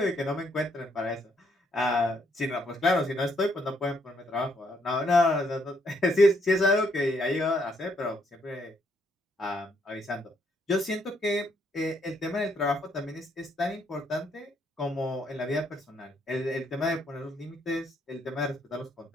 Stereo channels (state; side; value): normal; both; correlation 0.72